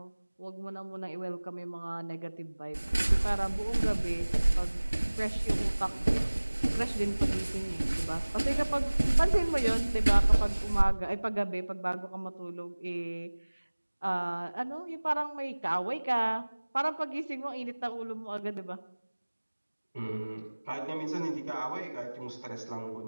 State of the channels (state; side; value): inverted; both; correlation -1.00